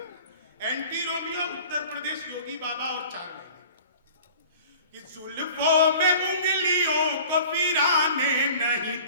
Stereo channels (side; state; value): both; inverted; correlation -0.45